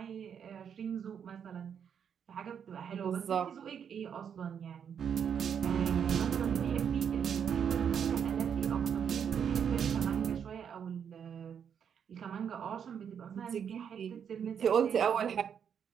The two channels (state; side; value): quieter; left; 7.8 dB